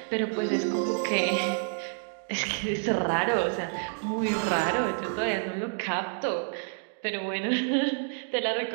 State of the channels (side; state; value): left; silent; 59 dB below the other